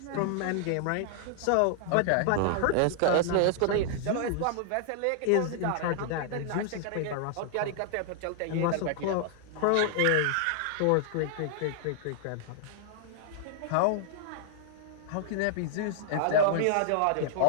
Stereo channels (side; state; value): both; different; correlation -0.01